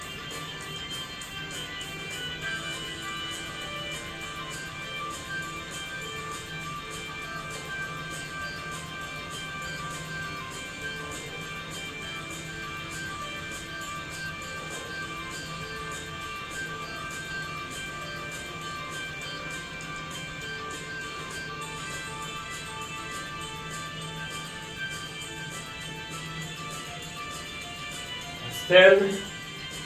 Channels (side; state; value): both; identical; correlation 1.00